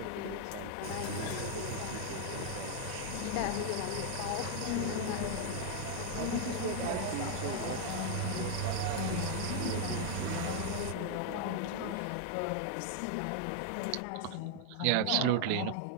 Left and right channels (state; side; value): different; both; correlation 0.00